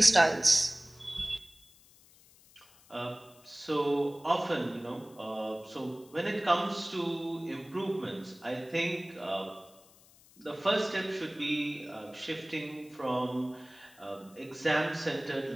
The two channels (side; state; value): left; noise; hiss, 26 dB below the sound